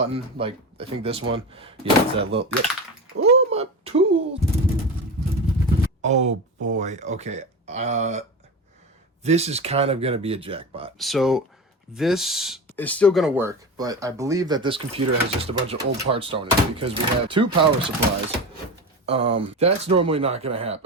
like I think this one. Yeah, it's that little, yep. Oh, my tools. Oh boy, okay. This is kind of gonna be a jackpot. So this is still gonna work, but I believe that this computer has just a bunch of old parts thrown in it because we have two power supplies. That's normally not going to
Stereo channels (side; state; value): both; normal; correlation 0.25